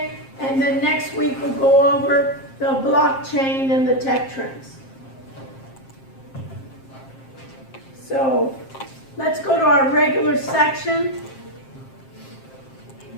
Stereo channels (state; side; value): late; right; 7.5 ms